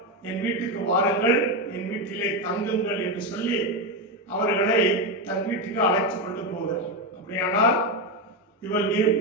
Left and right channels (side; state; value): both; normal; correlation 0.11